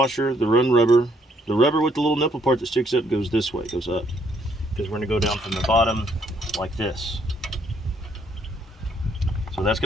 the run rubber, the rubber with the little nipple part that sticks up goes this way, goes up. Because we're going to go down from the bottom like this. So that's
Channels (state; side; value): normal; both; correlation 0.69